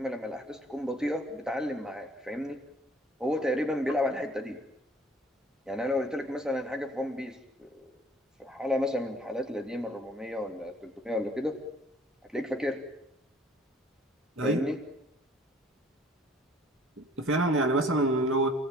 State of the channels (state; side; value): normal; both; correlation 0.56